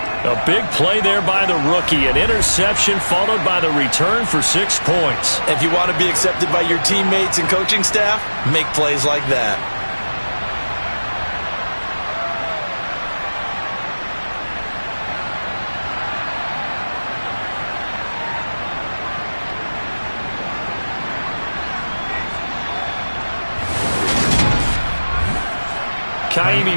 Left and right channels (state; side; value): inverted; both; correlation -1.00